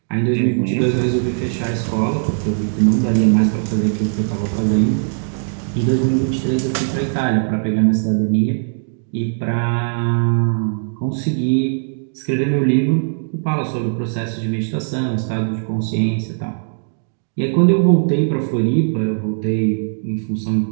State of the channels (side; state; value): left; silent; digital silence